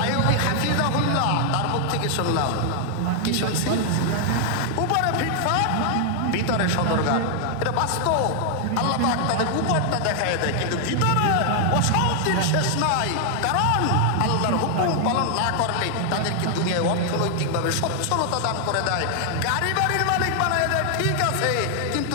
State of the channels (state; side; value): different; both; correlation 0.00